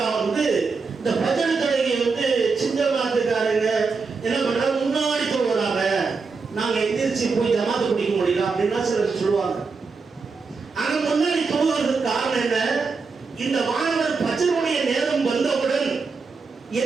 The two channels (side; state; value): left; quieter; 4.7 dB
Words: இந்த ஃபஜ்ர் தொழுகையை சின்ன மாத்துக்காரங்க என்ன பண்றாங்க? முன்னாடி தொழுகிறாங்க, நாங்க எந்திரிச்சு போய் ஜமாத்து பிடிக்க முடியல அப்படின்னா சிலர் சொல்லுவாங்க. ஆனா முன்னாடி தொழுவதற்கு காரணம் என்ன? இந்த மாணவர் ஃபஜ்ருடைய நேரம் வந்தவுடன்